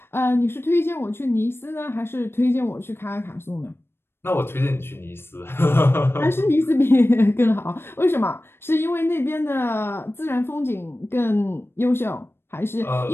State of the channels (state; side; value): late; right; 0.11 ms